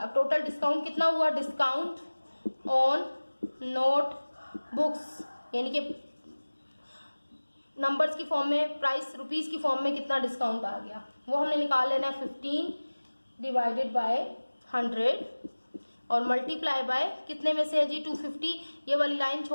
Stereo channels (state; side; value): inverted; both; correlation -1.00